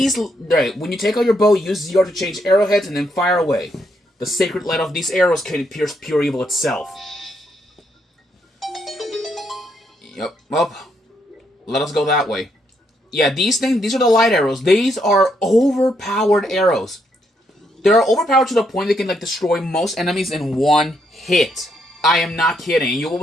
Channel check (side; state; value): both; normal; correlation 0.76